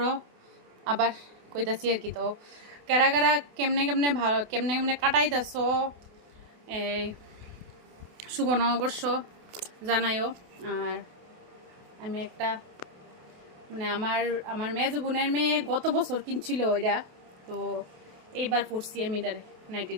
আবার কইতাছি আর কি। তো কারা কারা কেমনে কেমনে কাটাইতেছ শুভ নববর্ষ জানাইও। আর আমি একটা মানে আমার মেজো বোনের মেয়ে গত বছর কিনছিল ওইটা, তো এইবার পড়ছি আমি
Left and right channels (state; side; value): late; left; 28 ms